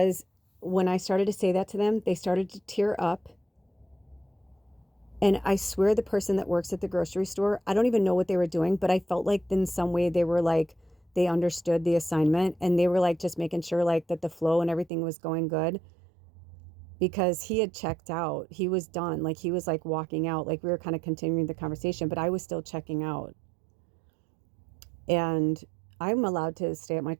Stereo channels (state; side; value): drops out; left; at 14.9 s